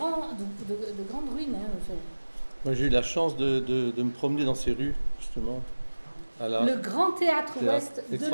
ruines. Hein, enfin. Moi, j'ai eu la chance de me promener dans ces rues, justement. Le grand théâtre ouest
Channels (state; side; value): inverted; both; correlation -1.00